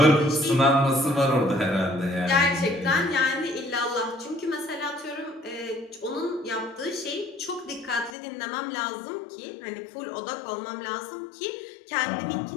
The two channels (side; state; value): right; drops out; at 8.2 s